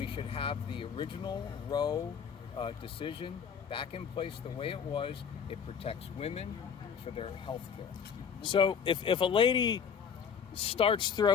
should have the original Roe decision back in place the way it was. It protects women for their health care. So if a lady starts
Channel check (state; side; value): quieter; right; 7.1 dB